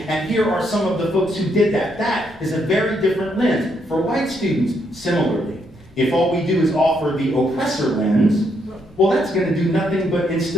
And here are some of the folks who did that. That is a very different lens. For white students, similarly, if all we do is offer the oppressor lens, well, that's going to do nothing but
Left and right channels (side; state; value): both; normal; correlation 0.75